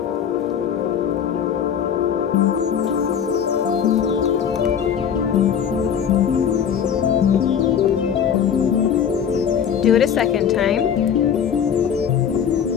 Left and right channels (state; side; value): quieter; right; 8.1 dB